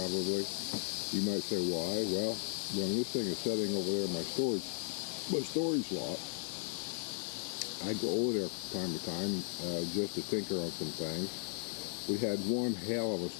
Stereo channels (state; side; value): silent; right; 54 dB below the other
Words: You might say, why? Well, when this thing is sitting over there in my storage lot, I go over there from time to time just to tinker on some things. We had one hell of a